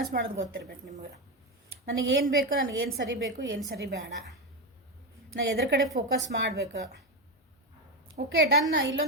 ಮಾಡೋದು ಗೊತ್ತಿರ್ಬೇಕು ನಿಮ್ಗೆ. ನನಗೇನು ಬೇಕು, ನನಗೇನು ಸರಿ ಬೇಕು, ಏನು ಸರಿ ಬೇಡ, ನಾನು ಎದ್ರ ಕಡೆ ಫೋಕಸ್ ಮಾಡಬೇಕು. Okay done.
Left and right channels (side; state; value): both; normal; correlation 0.12